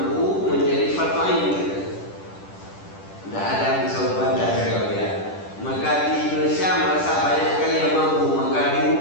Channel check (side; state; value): right; late; 10 ms